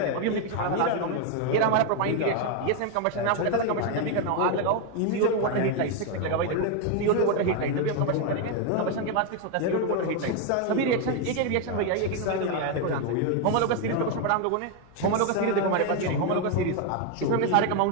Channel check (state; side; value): different; both; correlation 0.01